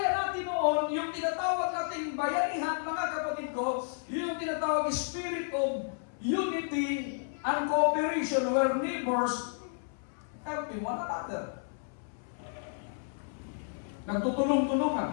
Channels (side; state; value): right; silent; 57 dB below the other